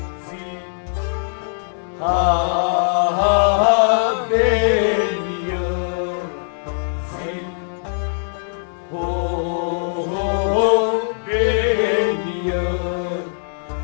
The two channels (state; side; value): silent; right; digital silence